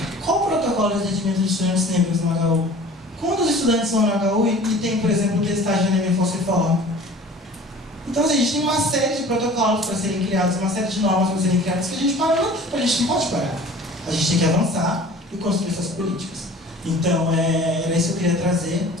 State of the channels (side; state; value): both; normal; correlation 0.45